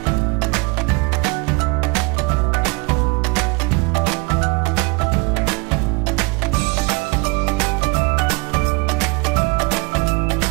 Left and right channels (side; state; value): left; quieter; 27.7 dB